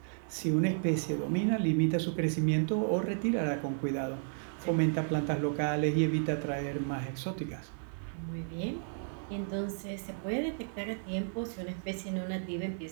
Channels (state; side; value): silent; left; digital silence